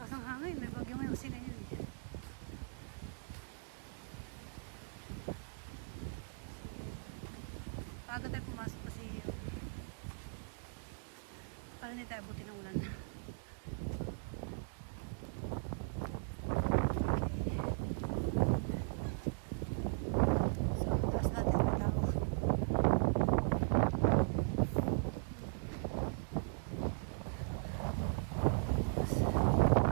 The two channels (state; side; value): silent; left; digital silence